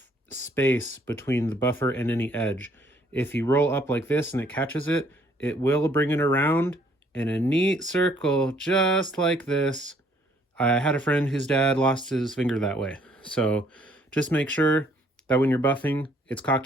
space between the buffer and any edge. If you roll up like this and it catches it, it will bring it around in a neat circle just like this. I had a friend whose dad lost his finger that way. So just make sure that when you're buffing, it's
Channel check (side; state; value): both; normal; correlation 0.64